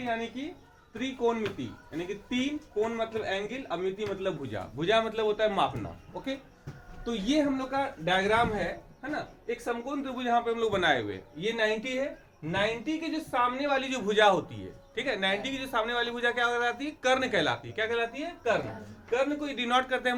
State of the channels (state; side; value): identical; both; correlation 1.00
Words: यानी कि त्रिकोणमिति यानी कि तीन, कोण मतलब एंगल, और मिति मतलब भुजा। भुजा मतलब होता है मापना। ओके, तो ये हम लोग का डायग्राम है ना। एक समकोण त्रिभुज यहाँ पे हम लोग बनाए हुए, ये 90 है। 90 के जो सामने वाली जो भुजा होती है, ठीक है, 90 की जो सामने वाली भुजा क्या कहलाती है? कर्ण कहलाती है। क्या कहलाती है? कर्ण। कर्ण को डिनोट करते हैं